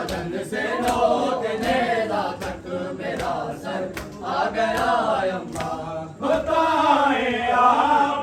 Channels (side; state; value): both; identical; correlation 1.00